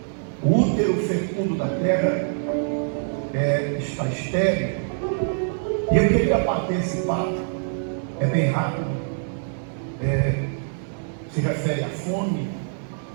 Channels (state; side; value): silent; left; digital silence